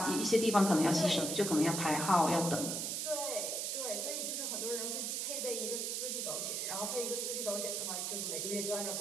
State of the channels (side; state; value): right; noise; hiss, 1 dB below the sound